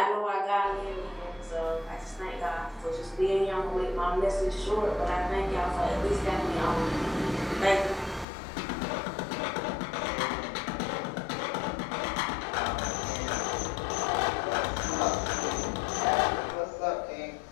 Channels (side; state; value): right; drops out; at 8.2 s